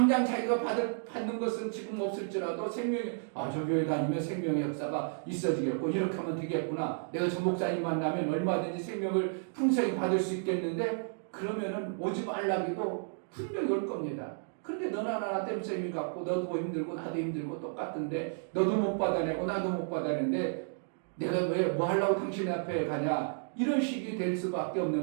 자기가 받는 것은 지금 없을지라도 생명의, 저 교회 다니면 생명의 역사가 있어지겠고, 이렇게 하면 되겠구나. 내가 저 목사님 만나면 얼마든지 생명을 풍성히 받을 수 있겠는데, 그러면은 오지 말라기도 분명히 올 겁니다. 그런데 너나 나나 땜쌤이 갖고, 너도 힘들고, 나도 힘들고, 똑같은데, 너도 못 받아내고, 나도 못 받아내는데, 내가 왜 뭐 하려고 당신 앞에 가냐? 이런 식이 될 수밖에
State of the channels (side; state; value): left; silent; digital silence